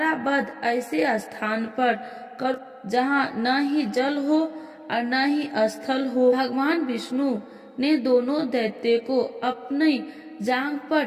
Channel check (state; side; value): identical; both; correlation 1.00